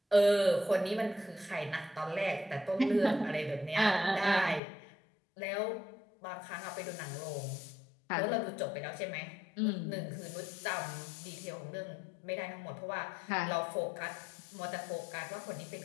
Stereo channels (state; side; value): drops out; right; at 4.6 s